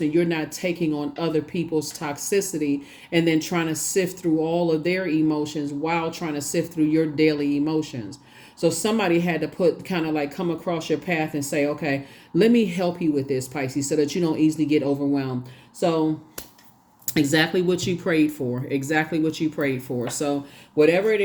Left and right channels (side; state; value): both; identical; correlation 1.00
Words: you're not taking on other people's toxicity and then trying to sift through all of their emotions while trying to sift through your daily emotions. So somebody had to put kind of like come across your path and say, okay, let me help you with this, Pisces, so that you don't easily get overwhelmed. So exactly what you prayed for, exactly what you prayed for. So whatever it